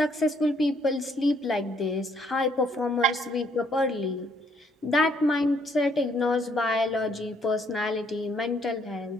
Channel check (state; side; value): normal; both; correlation 0.67